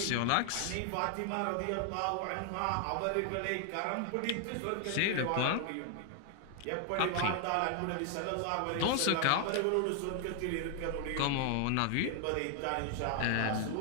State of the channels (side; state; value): both; different; correlation 0.00